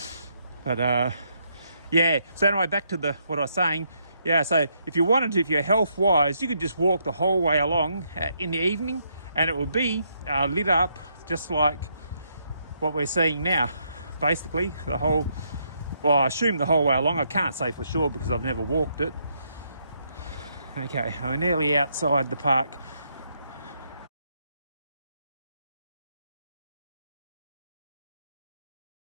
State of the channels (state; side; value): inverted; both; correlation -0.75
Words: But yeah, so anyway, back to what I was saying. Yeah, so if you wanted to, if you're health wise, you could just walk the whole way along in the evening, and it would be lit up just like what we're seeing now. Basically, well, I assume the whole way along. I can't say for sure because I've never walked it. Okay, we're nearly outside the park.